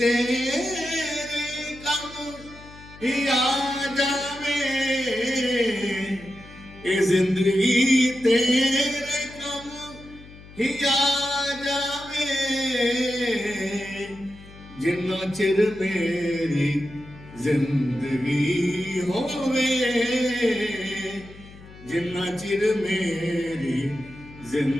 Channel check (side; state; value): left; noise; hum, 19 dB below the sound